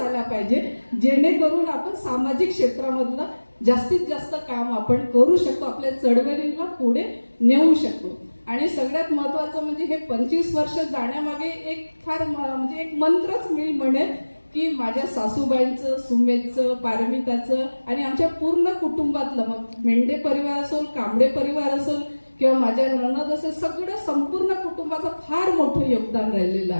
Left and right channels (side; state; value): both; inverted; correlation -1.00